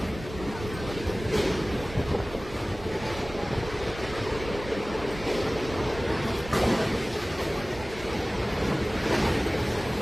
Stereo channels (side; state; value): both; normal; correlation 0.98